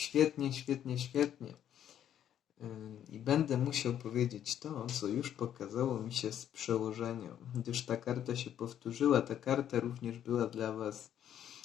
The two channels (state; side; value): quieter; right; 10.3 dB